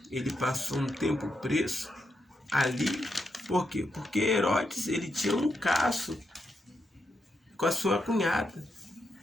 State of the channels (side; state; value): both; normal; correlation 0.83